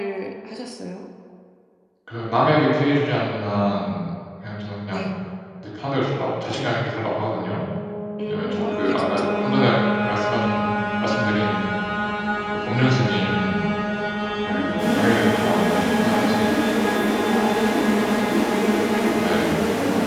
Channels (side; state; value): both; identical; correlation 1.00